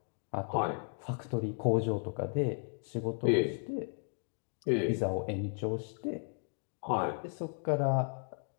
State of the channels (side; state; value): right; silent; 55 dB below the other